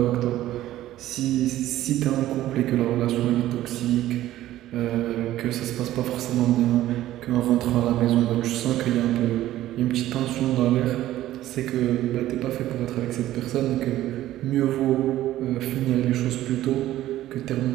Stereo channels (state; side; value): quieter; left; 14.2 dB